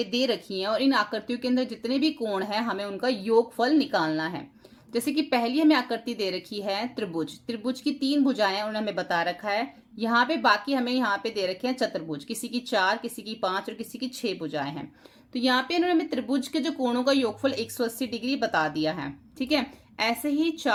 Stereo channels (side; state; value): both; identical; correlation 1.00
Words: दे रखी हैं और इन आकृतियों के अंदर जितने भी कोण हैं हमें उनका योगफल निकालना है। जैसे कि पहली हमें आकृति दे रखी है त्रिभुज, त्रिभुज की 3 भुजाएं उन्होंने हमें बता रखा है। यहाँ पे बाकी हमें यहाँ पे दे रखे हैं चतुर्भुज, किसी की 4, किसी की 5 और किसी की 6 भुजाएं हैं। तो यहाँ पे इन्होंने हमें त्रिभुज के जो कोणों का योगफल 180 डिग्री बता दिया है, ठीक है। ऐसे ही